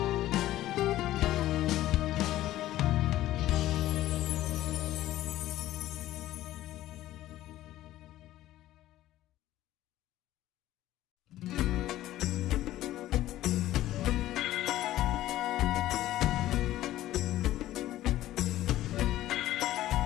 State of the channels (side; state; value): right; quieter; 14.5 dB